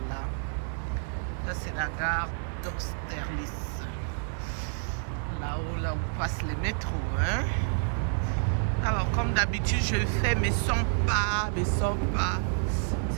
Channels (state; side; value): silent; left; 59 dB below the other